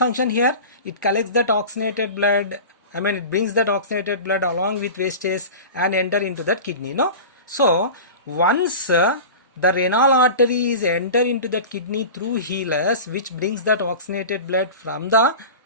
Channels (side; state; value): both; inverted; correlation -0.33